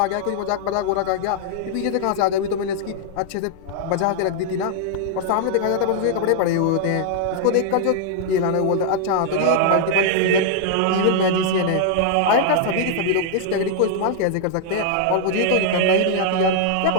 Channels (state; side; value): different; both; correlation -0.01